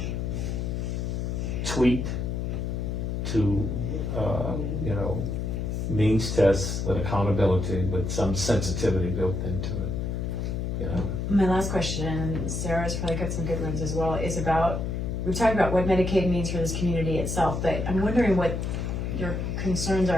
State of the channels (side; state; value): left; noise; hum, 2 dB below the sound